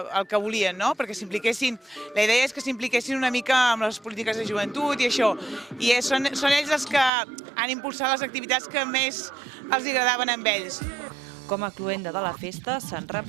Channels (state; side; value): drops out; left; at 7.1 s